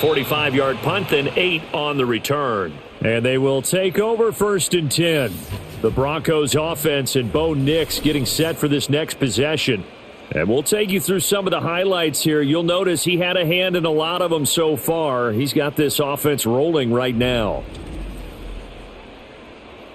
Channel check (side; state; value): both; identical; correlation 1.00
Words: punt, then 8 on the return. And they will take over 1st and 10. The Broncos offense and Bo Nix getting set for this next possession. And we'll take you through some of the highlights here. You'll notice he had a hand in a lot of them so far. He's got this offense rolling right now.